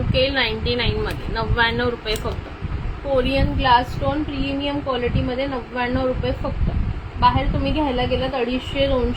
येईल 99 मध्ये. 99 रुपये फक्त. Korean glass stone premium quality मध्ये 99 रुपये फक्त. बाहेर तुम्ही घ्यायला गेलात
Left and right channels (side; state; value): both; identical; correlation 1.00